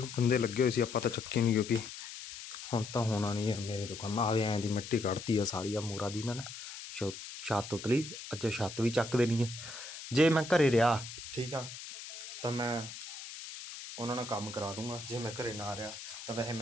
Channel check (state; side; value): noise; left; hiss, 11 dB below the sound